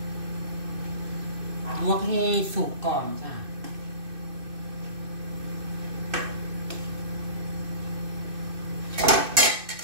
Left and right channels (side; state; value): left; late; 2.6 ms